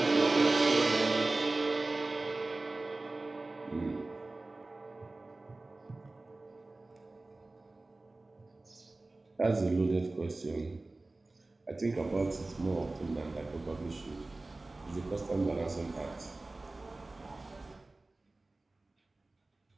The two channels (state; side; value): quieter; left; 3.1 dB